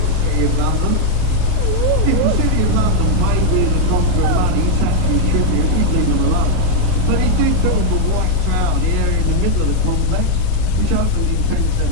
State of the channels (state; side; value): different; both; correlation 0.00